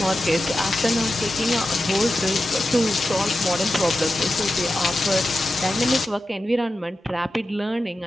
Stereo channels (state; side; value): normal; both; correlation 0.91